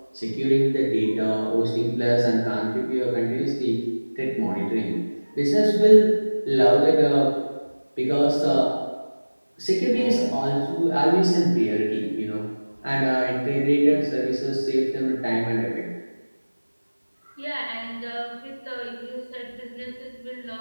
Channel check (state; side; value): inverted; both; correlation -1.00